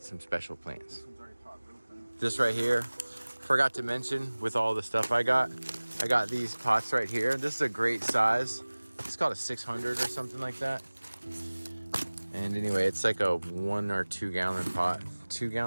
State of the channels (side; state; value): both; inverted; correlation -1.00